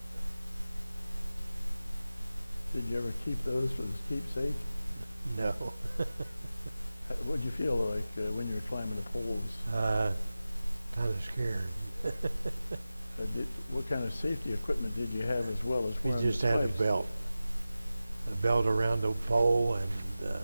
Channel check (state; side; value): inverted; both; correlation -0.95